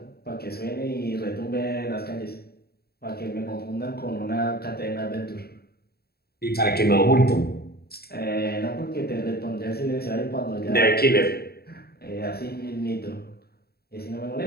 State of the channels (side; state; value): right; late; 0.46 ms